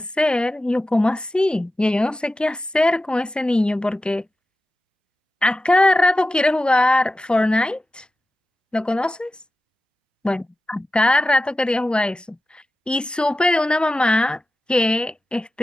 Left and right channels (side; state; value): both; normal; correlation 0.92